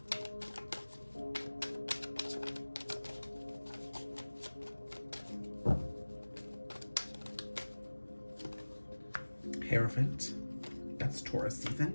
Hierophant. That's Taurus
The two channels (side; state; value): both; inverted; correlation -1.00